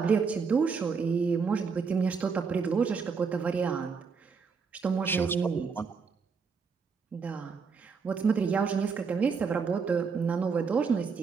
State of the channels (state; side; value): quieter; left; 5.4 dB